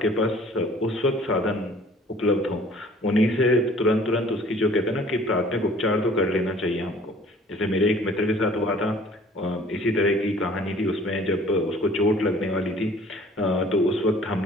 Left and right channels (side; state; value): both; normal; correlation 0.52